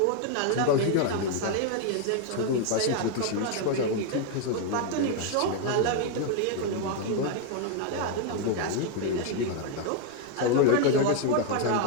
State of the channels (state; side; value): different; both; correlation 0.01